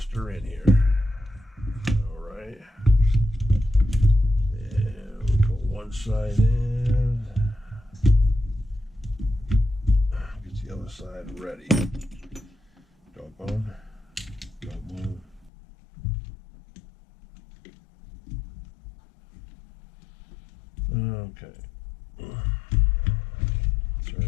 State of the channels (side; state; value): right; drops out; at 15.5 s